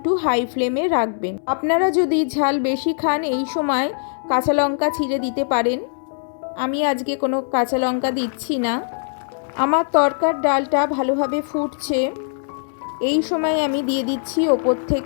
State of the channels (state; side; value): silent; right; digital silence